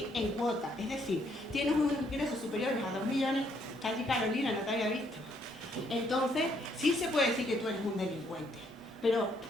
en cuota, es decir, tienes unos ingresos superiores a 2 millones, está allí Carolina, no te había visto. Entonces, sí se puede decir que tú eres un delincuente, pero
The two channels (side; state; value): both; normal; correlation 0.70